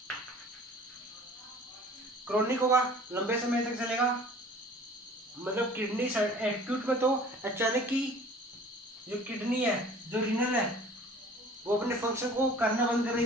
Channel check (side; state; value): both; normal; correlation 0.48